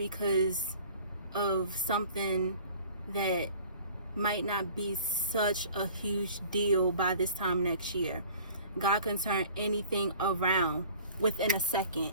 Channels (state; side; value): inverted; both; correlation -0.47